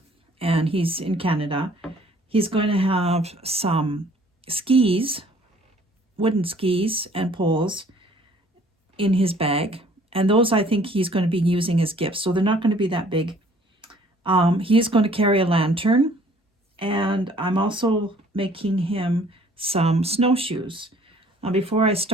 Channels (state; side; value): normal; both; correlation 0.57